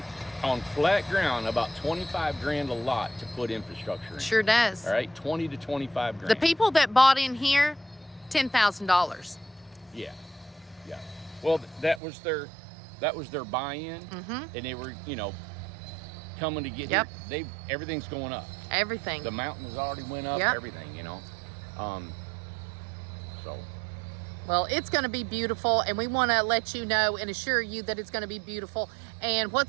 on flat ground, about 25 grand a lot to put infrastructure in. Sure does. All right, 20 to 25 grand. The people that bought in here, $10,000. Yeah. Well, that was their buy-in, and they were, coming to get Yep. here. Everything's going up. Everything. The mountain has already went up. Yep. Everything, So. Well, it's going to be beautiful, and we want to let you know and assure you that it's going to be beautiful. And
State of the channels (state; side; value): drops out; left; at 12.0 s